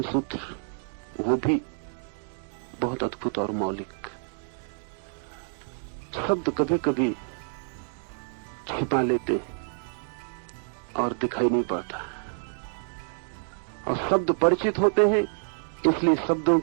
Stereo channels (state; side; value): silent; left; digital silence